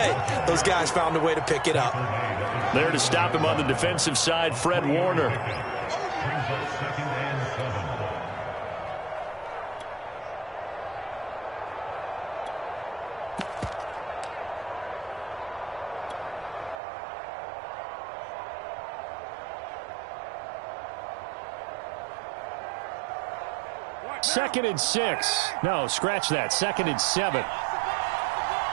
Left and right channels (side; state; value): left; drops out; at 16.8 s